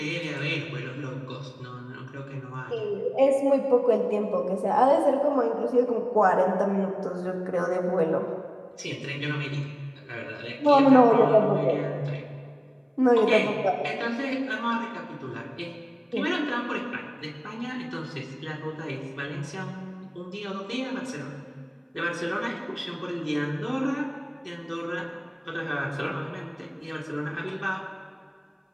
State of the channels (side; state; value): both; identical; correlation 1.00